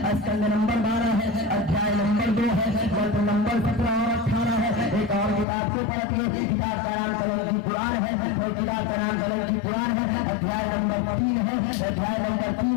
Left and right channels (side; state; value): right; drops out; at 5.5 s